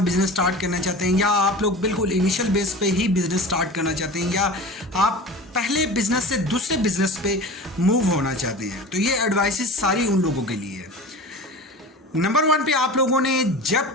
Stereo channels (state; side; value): normal; both; correlation 0.34